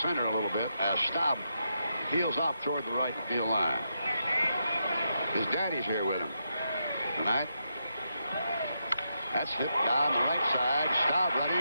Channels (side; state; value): both; inverted; correlation -0.83